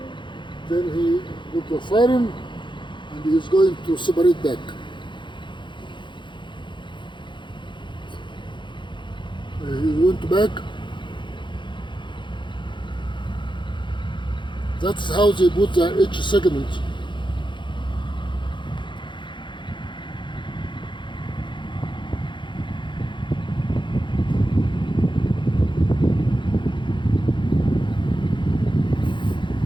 Then he put the siren, and he is going to separate back. He went back. That's how they put the H segment.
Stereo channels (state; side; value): late; right; 0.23 ms